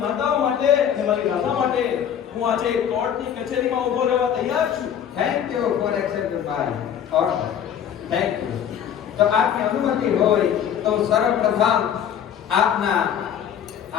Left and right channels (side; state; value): right; quieter; 9.0 dB